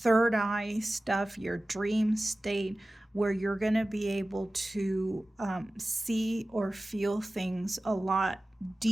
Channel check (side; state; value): both; normal; correlation 0.96